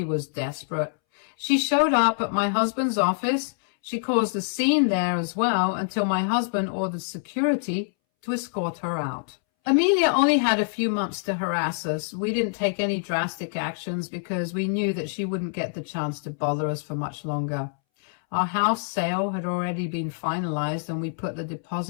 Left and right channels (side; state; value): right; silent; 61 dB below the other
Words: was desperate. She showed up at my husband's office. She caused a scene there as well until my husband ordered security to escort her out. Amelia only had a few months to harass us. We didn't take any drastic actions because we knew that she wouldn't get the chance to bother us for much longer. Our house sale had already been finalized and we put the